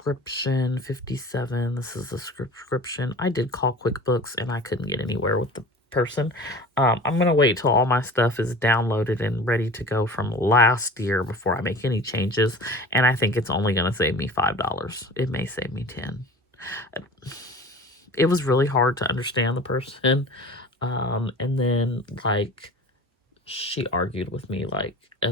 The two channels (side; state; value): both; normal; correlation 0.39